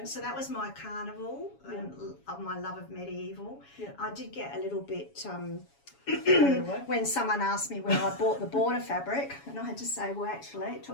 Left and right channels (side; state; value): right; late; 7.2 ms